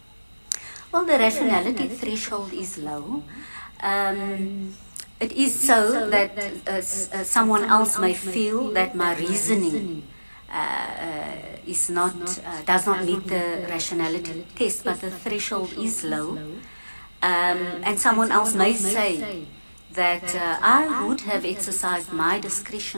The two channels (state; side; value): inverted; both; correlation -1.00